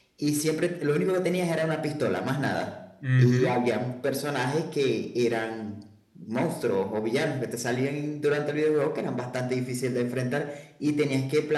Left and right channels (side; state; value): both; identical; correlation 1.00